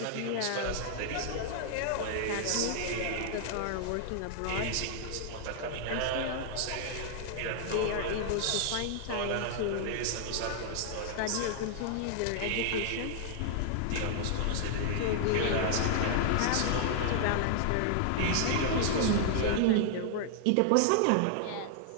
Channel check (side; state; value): both; different; correlation -0.01